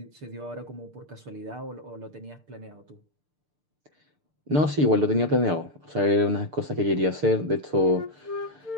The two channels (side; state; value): left; late; 6.7 ms